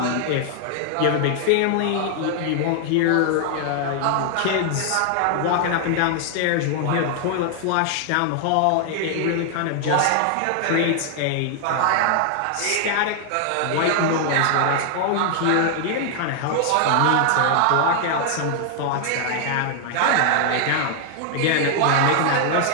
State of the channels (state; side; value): different; both; correlation 0.00